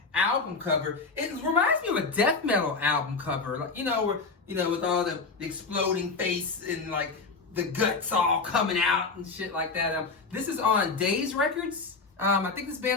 cover. It reminds me of a death metal album cover, like where with all the exploding face and like the guts all coming out and shit like that. This is on Days Records. I think this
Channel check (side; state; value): right; quieter; 4.3 dB